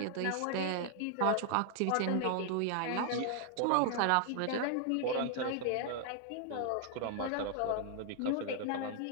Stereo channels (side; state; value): both; different; correlation 0.00